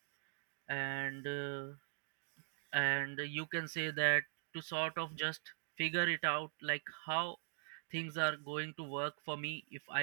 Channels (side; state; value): left; silent; digital silence